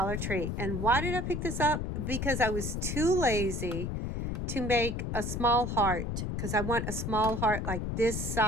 Tree. And why did I pick this up? Because I was too lazy to make a small heart. Because I want a small heart like this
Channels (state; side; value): noise; left; rumble, 2 dB below the sound